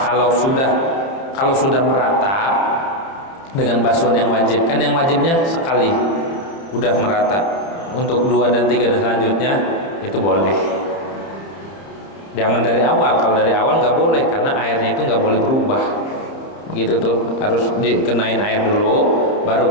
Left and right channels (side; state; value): right; late; 30 ms